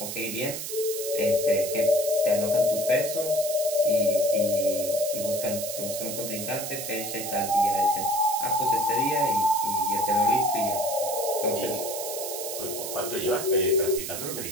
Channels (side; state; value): right; noise; hiss, 6 dB below the sound